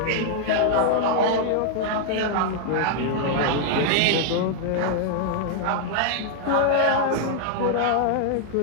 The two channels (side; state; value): both; different; correlation -0.01